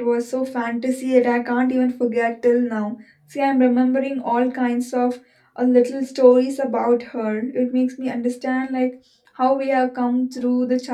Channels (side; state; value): both; identical; correlation 1.00